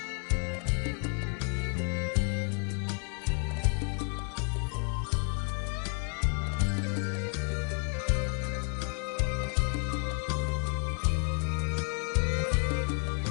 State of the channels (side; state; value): right; quieter; 39.4 dB